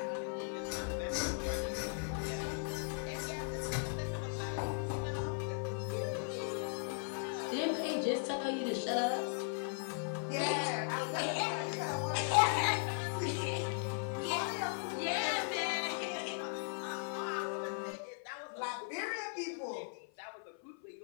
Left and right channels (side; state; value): right; silent; 52 dB below the other